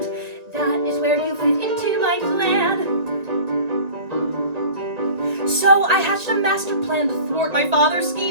That is where you fit into my plan. So I hatched a master plan to thwart my father's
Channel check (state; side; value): late; left; 1.9 ms